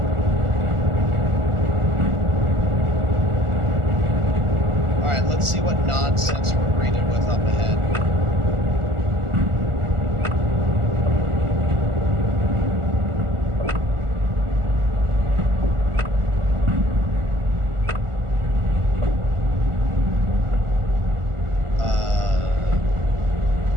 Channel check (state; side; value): late; left; 1.4 ms